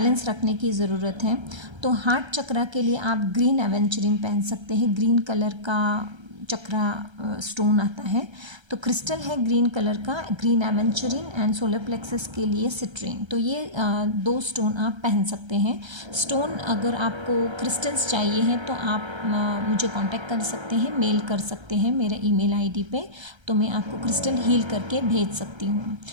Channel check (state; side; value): late; left; 1.3 ms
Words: रखने की ज़रूरत है। तो हार्ट चक्रा के लिए आप ग्रीन एवेंचरिन पहन सकते हैं। ग्रीन कलर का चक्रा स्टोन आता है, तो क्रिस्टल है ग्रीन कलर का, ग्रीन एवेंचरिन एंड सोलर प्लेक्सस के लिए सिट्रीन। तो ये 2 स्टोन आप पहन सकते हैं। स्टोन अगर आपको क्रिस्टल्स चाहिए हैं तो आप मुझे कांटेक्ट कर सकते हैं, मेल कर सकते हैं मेरे ईमेल आईडी पे, तो मैं आपको क्रिस्टल हील करके भेज सकती हूँ।